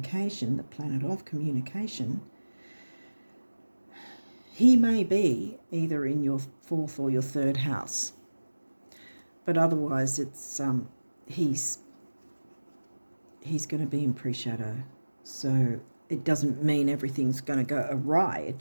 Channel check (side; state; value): both; inverted; correlation -1.00